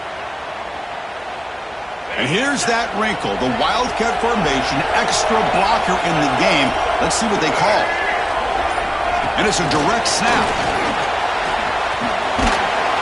And here's that wrinkle, the Wildcat formation, extra blocker in the game. Let's see what they call. And it's a direct snap.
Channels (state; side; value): identical; both; correlation 1.00